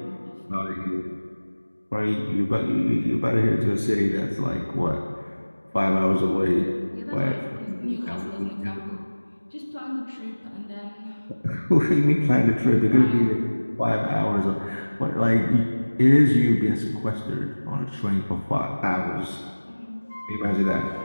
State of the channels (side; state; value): both; inverted; correlation -1.00